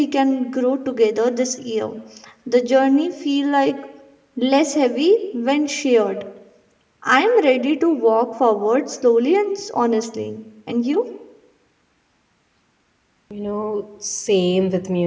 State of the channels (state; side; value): identical; both; correlation 1.00